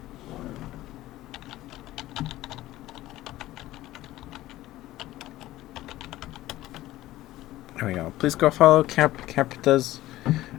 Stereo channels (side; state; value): right; quieter; 15.9 dB